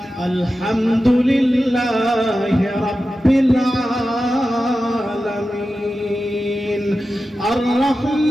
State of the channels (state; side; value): normal; both; correlation 0.93